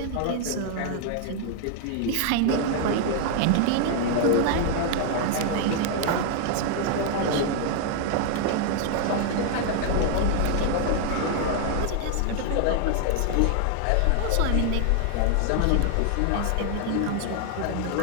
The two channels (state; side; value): different; both; correlation 0.00